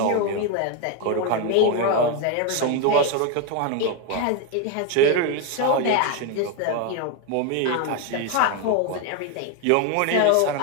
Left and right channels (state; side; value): different; both; correlation 0.01